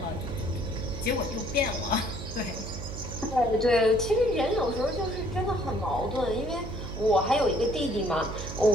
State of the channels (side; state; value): right; noise; hum, 8 dB below the sound